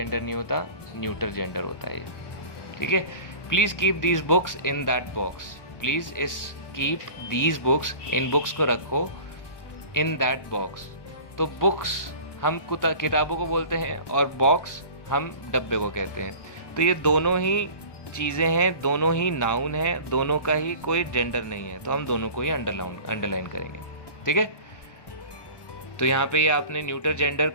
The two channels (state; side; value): late; right; 1.1 ms